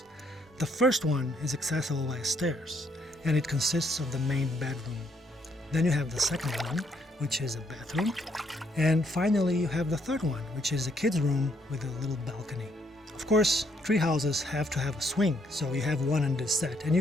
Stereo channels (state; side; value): normal; both; correlation 0.71